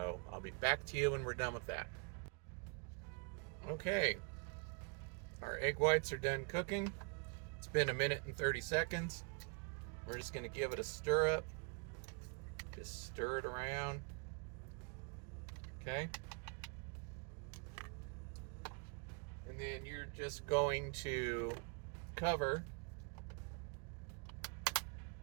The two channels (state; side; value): quieter; left; 34.9 dB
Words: I'll be back to you when we're done with that. Okay, our egg whites are done cooking. It's been 1 minute and 30 seconds. We're just going to give it a stir up. Just stir it around. Okay. And then you're just going to cover